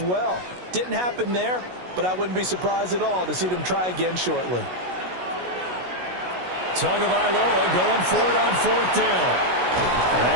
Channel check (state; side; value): late; left; 16 ms